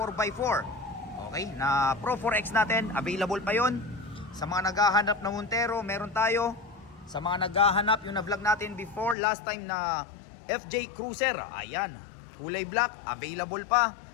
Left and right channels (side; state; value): right; drops out; at 9.2 s